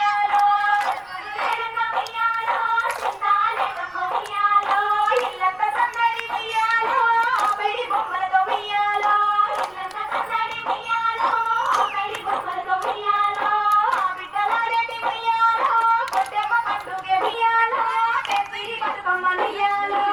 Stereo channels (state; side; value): noise; right; rumble, 30 dB below the sound